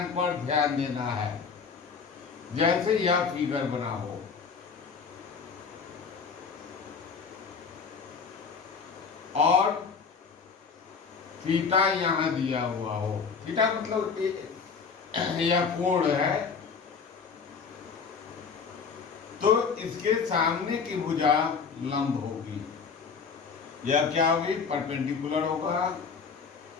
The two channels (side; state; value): right; quieter; 5.6 dB